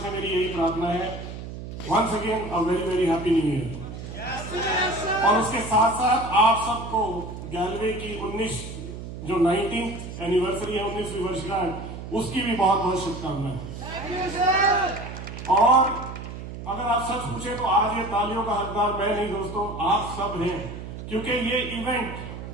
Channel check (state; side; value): noise; right; hum, 10 dB below the sound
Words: मेरी यही प्रार्थना है। Once again a very very happy new year. और उसके साथ साथ आप सबको गैलवे की 19th एनिवर्सरी है, 19वीं वर्षगांठ, उसकी भी बहुत बहुत शुभकामनाएं। और अगर आप सच पूछे तो आज ये तालियों का हकदार मैं नहीं दोस्तों, आप सब हैं। क्योंकि ये इवेंट